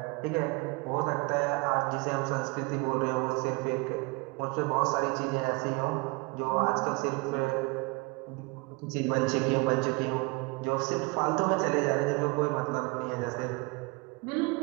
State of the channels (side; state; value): left; quieter; 27.4 dB